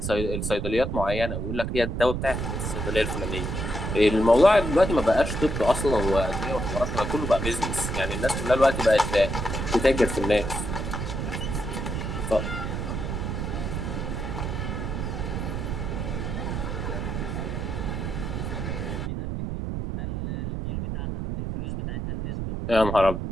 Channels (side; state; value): right; noise; rumble, 3 dB below the sound